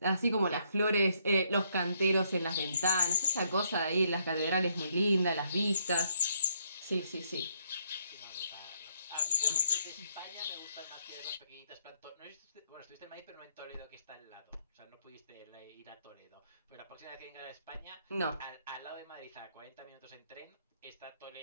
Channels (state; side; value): inverted; both; correlation -0.72